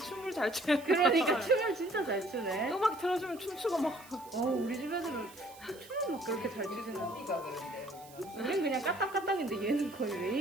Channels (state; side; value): noise; right; hiss, 21 dB below the sound